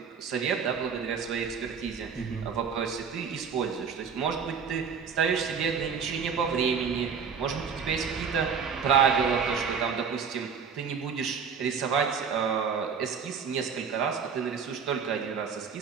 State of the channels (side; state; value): left; quieter; 6.3 dB